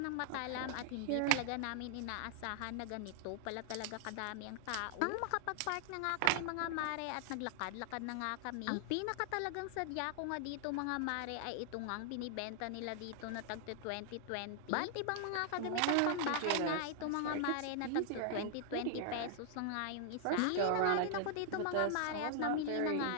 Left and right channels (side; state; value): both; different; correlation 0.00